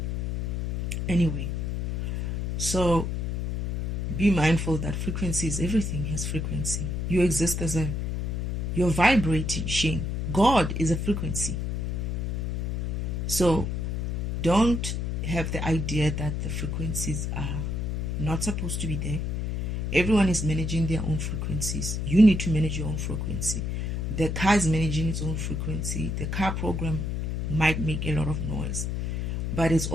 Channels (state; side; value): noise; left; hum, 1 dB below the sound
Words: Anyway, so be mindful that frequency is everything. Has frequency. You exist as you're vibrating. God is a frequency. So don't have the idea that the frequencies are not supposed to be there. Everyone is managing their own frequencies. You need to manage your own frequency. The car is managing its own frequency. The car program might make a lot of noise, but it's